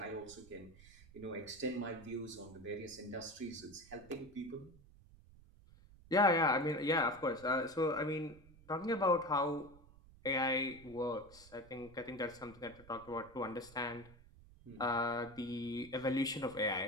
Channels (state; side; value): noise; right; rumble, 22 dB below the sound